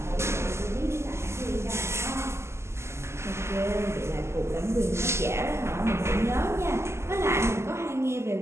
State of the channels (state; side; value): late; left; 0.13 ms